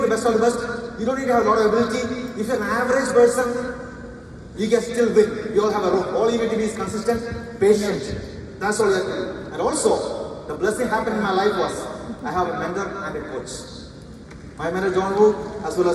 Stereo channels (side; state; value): both; identical; correlation 1.00